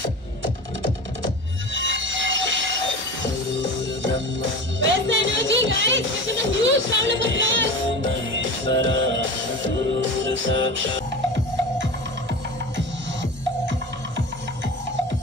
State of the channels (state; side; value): normal; both; correlation 0.32